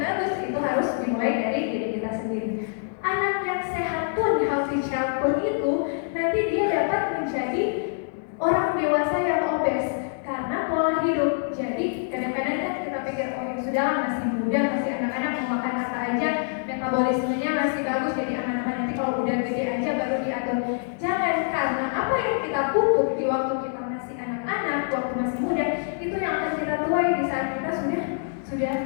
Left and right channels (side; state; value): right; silent; digital silence